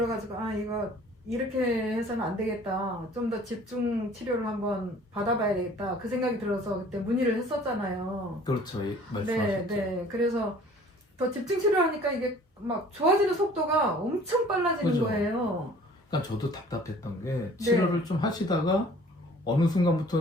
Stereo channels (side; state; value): both; normal; correlation 0.51